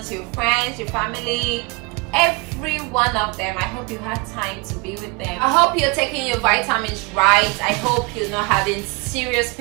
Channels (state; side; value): quieter; left; 27.9 dB